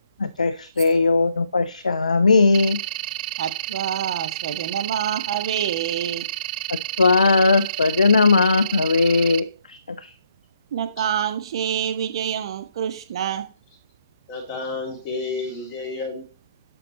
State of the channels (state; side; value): inverted; both; correlation -0.72